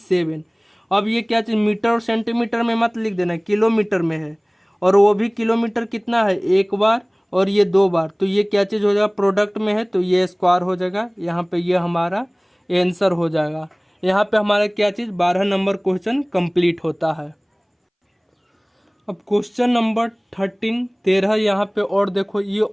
अब ये क्या चीज़, मीटर और सेंटीमीटर में मत लिख देना, किलोमीटर में है, और वो भी किलोमीटर कितना है, 1 बार और ये 2 बार। तो ये क्या चीज़ हो जाएगा, प्रोडक्ट में है तो ये स्क्वायर हो जाएगा। यहाँ पे ये हमारा आंसर हो जाएगा। यहाँ पे हमारा क्या चीज़, 12 नंबर क्वेश्चन कंप्लीट होता है। अब क्वेश्चन नंबर 13 यहाँ पे, और देखो ये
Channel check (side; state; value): both; identical; correlation 1.00